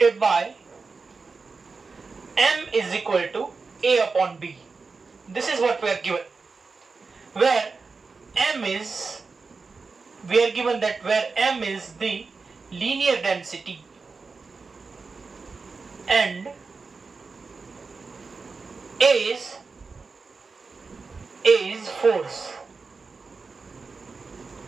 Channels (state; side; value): quieter; left; 4.4 dB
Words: M is equal to A upon B. This is what we are given, where we are given that where M is the linear density and A is force.